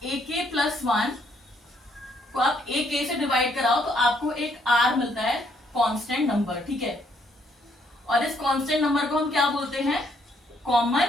AK+1 को आप AK से डिवाइड कराओ तो आपको एक R मिलता है, कांस्टेंट नंबर, ठीक है। और इस कांस्टेंट नंबर को हम क्या बोलते हैं,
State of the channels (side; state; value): both; normal; correlation 0.70